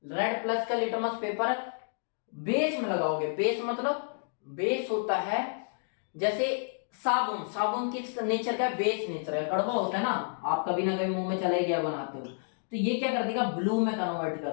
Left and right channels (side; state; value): right; silent; digital silence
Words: रेड प्लस का लिटमस पेपर बेस में लगाओगे। बेस मतलब, बेस होता है जैसे साबुन, साबुन किस नेचर का? बेस नेचर है, कड़वा होता है ना, आप कभी ना कभी मुंह में चला ही गया बनाते हो, तो ये क्या कर देगा? ब्लू में कन्वर्ट